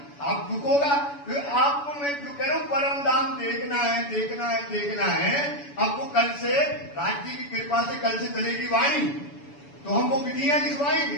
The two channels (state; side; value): late; right; 7.0 ms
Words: आप दुख होगा। तो आपको मैं जो कह रहा हूं, परम धाम देखना है, देखना है, देखना है। आपको कल से राज्य की कृपा से कल से चलेगी वाणी, तो हम वो विधियां